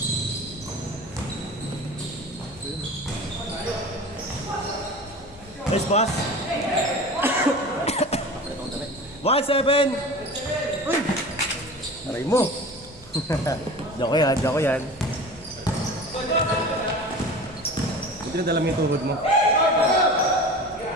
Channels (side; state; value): right; noise; hum, 26 dB below the sound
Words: Nice pass! 1-7! Uy! Aray mo! Joko yan. Buti na dala mo yung tuhod mo.